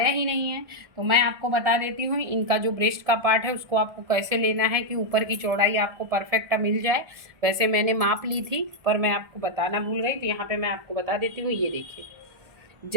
ही नहीं है, तो मैं आपको बता देती हूँ इनका जो ब्रेस्ट का पार्ट है उसको आपको कैसे लेना है कि ऊपर की चौड़ाई आपको परफेक्ट मिल जाए। वैसे मैंने माप ली थी पर मैं आपको बताना भूल गई, तो यहाँ पे मैं आपको बता देती हूँ। ये देखिए,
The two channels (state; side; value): late; left; 1.7 ms